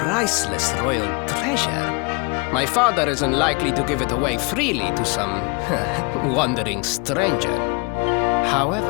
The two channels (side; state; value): right; quieter; 30.5 dB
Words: royal treasure. My father is unlikely to give it away freely to some wandering stranger.